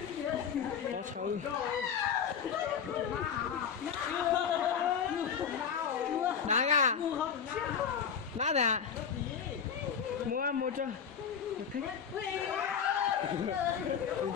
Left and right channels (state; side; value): quieter; right; 7.3 dB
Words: To sâu. Đá à? Đá này à? Mua cho. Một thích.